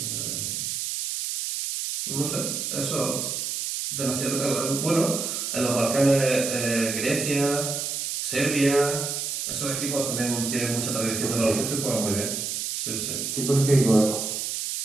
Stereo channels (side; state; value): right; noise; hiss, 3 dB below the sound